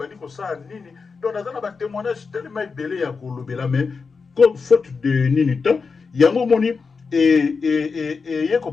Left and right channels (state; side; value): quieter; right; 4.9 dB